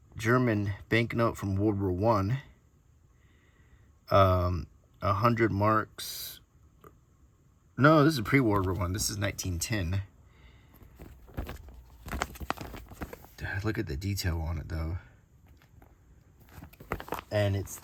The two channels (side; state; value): both; identical; correlation 1.00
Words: German banknote from World War One. 100 marks. No, this is pre-World War One. This is 1910. Look at the detail on it, though. And it's